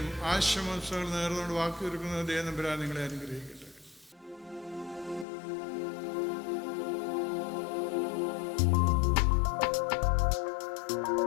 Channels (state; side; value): drops out; right; at 5.2 s